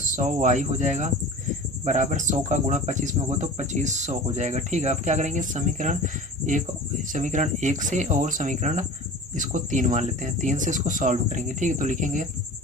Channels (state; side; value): normal; both; correlation 0.38